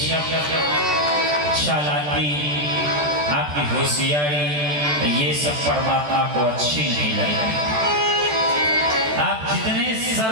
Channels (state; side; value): late; left; 14 ms